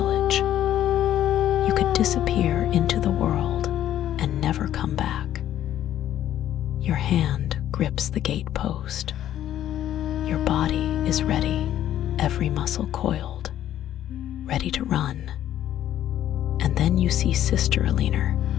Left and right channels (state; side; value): quieter; right; 11.8 dB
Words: You could disappear into the world and never come back. Your hand grips the gate post. Your body is ready, every muscle coiled, ready to run. And then you see Sister Alina.